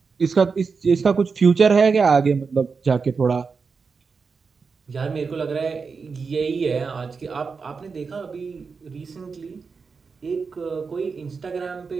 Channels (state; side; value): quieter; left; 5.1 dB